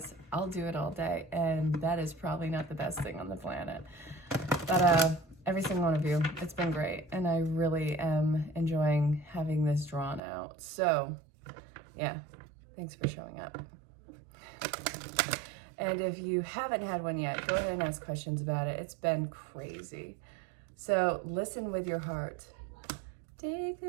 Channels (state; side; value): drops out; left; at 10.2 s